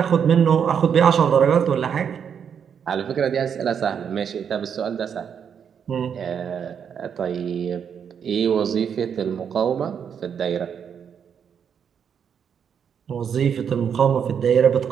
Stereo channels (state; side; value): quieter; left; 7.6 dB